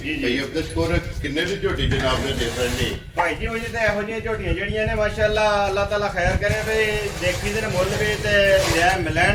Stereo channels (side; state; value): both; identical; correlation 1.00